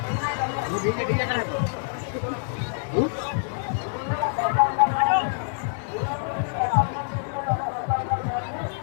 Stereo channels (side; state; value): right; silent; digital silence